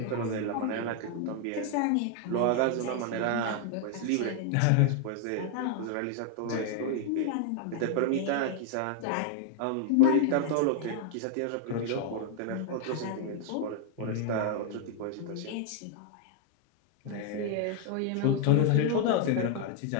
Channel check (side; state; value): both; different; correlation 0.00